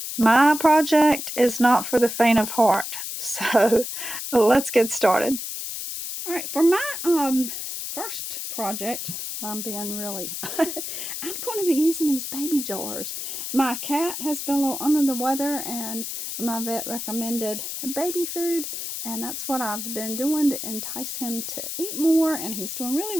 My project is not for the faint of heart, so let's get started. All right, for my first project, I'm being really I'm going to be using these baby jars. My cat has been a little under the weather and my vet recommended baby food, and that's what I've been doing to entice him to eat more, and he's doing really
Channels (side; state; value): left; noise; hiss, 6 dB below the sound